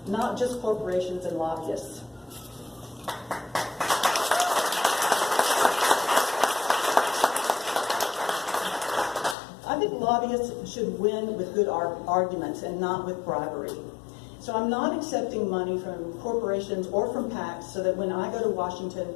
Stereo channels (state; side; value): drops out; right; at 9.3 s